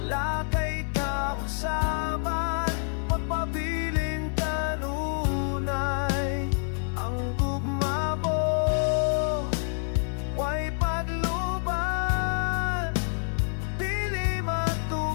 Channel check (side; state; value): right; silent; 60 dB below the other